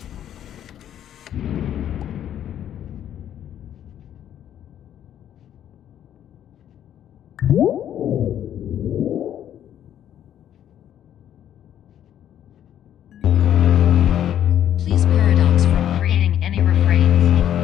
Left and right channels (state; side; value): quieter; right; 10.6 dB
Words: Please paradox from creating any